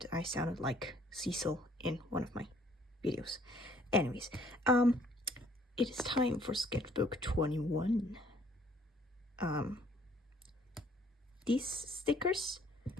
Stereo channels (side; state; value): both; normal; correlation 0.61